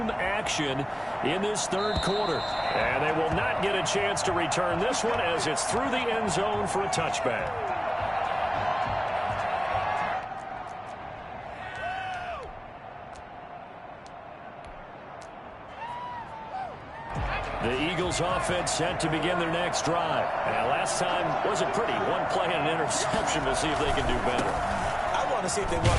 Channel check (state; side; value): identical; both; correlation 1.00